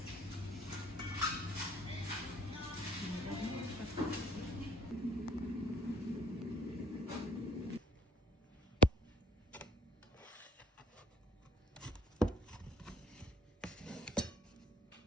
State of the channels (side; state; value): both; normal; correlation 0.57